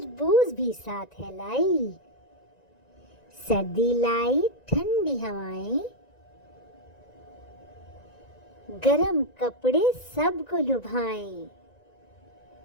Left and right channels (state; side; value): late; right; 1.9 ms